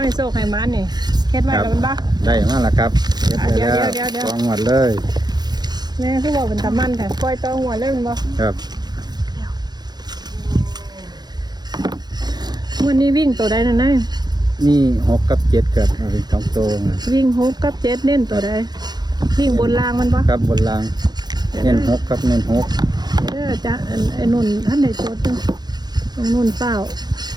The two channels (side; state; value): left; late; 0.20 ms